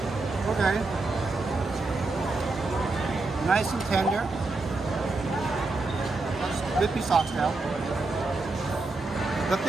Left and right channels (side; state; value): left; quieter; 3.4 dB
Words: Okay. Nice and tender. Good piece of oxtail. The